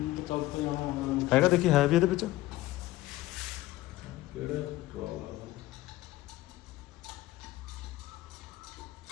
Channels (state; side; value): quieter; right; 16.9 dB